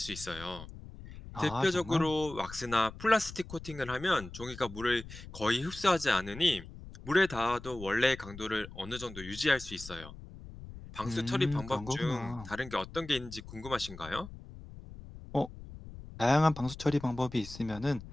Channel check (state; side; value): noise; left; rumble, 14 dB below the sound